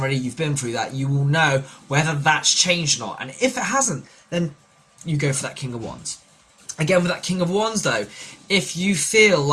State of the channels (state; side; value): identical; both; correlation 1.00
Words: you've been through that. You will know whether that's changed or not. And if it hasn't, then you go for that King of Wands. Again, with that King of Wands though, if you feel